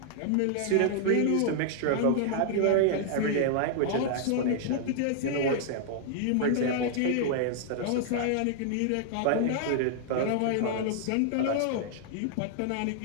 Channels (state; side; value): different; both; correlation -0.01